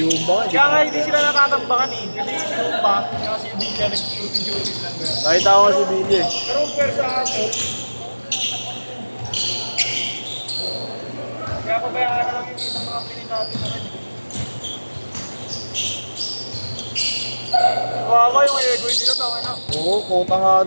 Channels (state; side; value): inverted; both; correlation -1.00